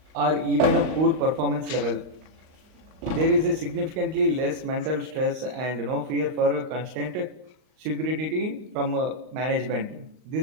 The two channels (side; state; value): left; late; 38 ms